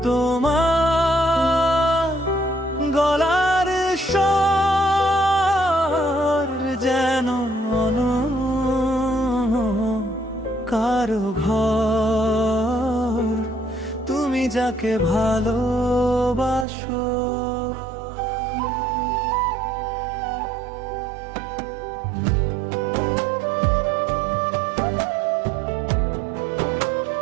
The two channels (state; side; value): drops out; left; at 16.7 s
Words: তোমার গলার স্বর যেন কারো ঘর। তুমি যাকে ভালোবাসো,